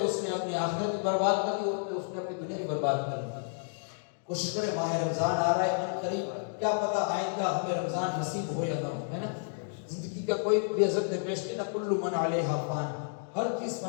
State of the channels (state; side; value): silent; right; digital silence